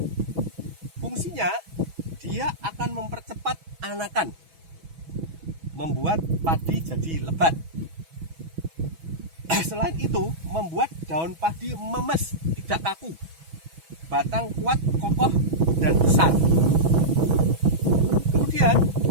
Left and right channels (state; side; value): late; left; 6.1 ms